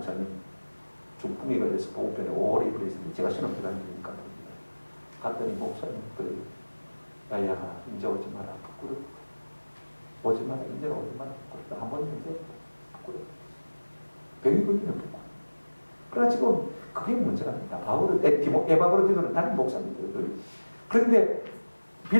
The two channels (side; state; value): both; inverted; correlation -1.00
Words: 중풍에 걸려서 보급병에 오래 입원했는데 제가 신학교 다니니까 갔더니 목사님들 야야 이제 오지 마라 부끄럽다. 오지 마라 이제 오지 마라 부끄럽다. 한번 이제 부끄럽다. 병이 걸리면 부끄럽다. 그러나 지금 그게 문제가 아니다. 에바브로디도는 다른 목사님들. 그런데